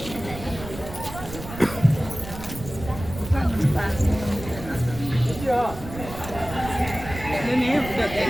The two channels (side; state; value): right; noise; rumble, 12 dB below the sound